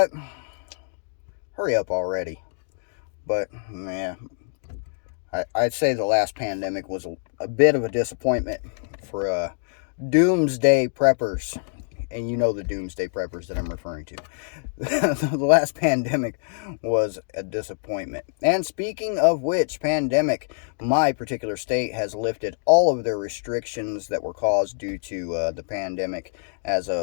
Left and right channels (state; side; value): silent; right; digital silence